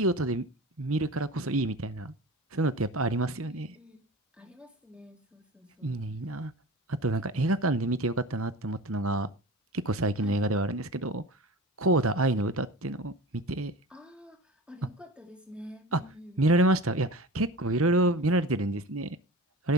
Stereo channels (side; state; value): both; normal; correlation 0.35